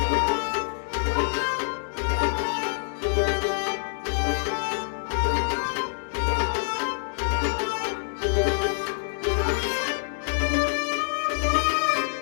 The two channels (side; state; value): right; silent; digital silence